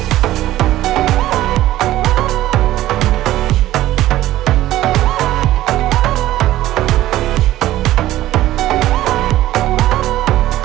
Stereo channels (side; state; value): left; quieter; 14.8 dB